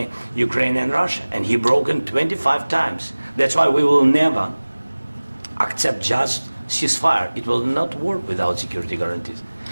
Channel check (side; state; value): both; inverted; correlation -1.00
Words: Ukraine, and Russia, and he broken 25 times. That's why we will never accept just ceasefire. It will not work without security guarantees.